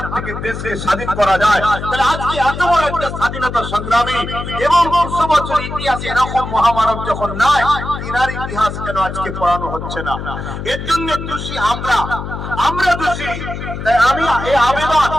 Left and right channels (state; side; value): noise; left; hum, 7 dB below the sound